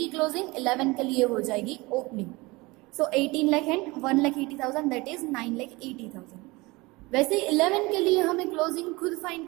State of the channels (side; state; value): left; quieter; 23.2 dB